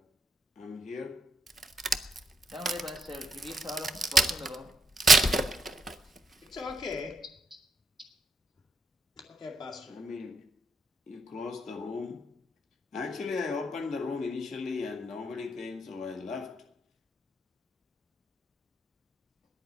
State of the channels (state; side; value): normal; both; correlation 0.80